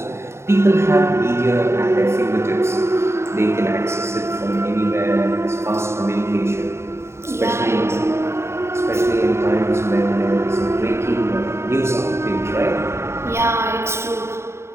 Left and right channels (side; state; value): left; late; 0.13 ms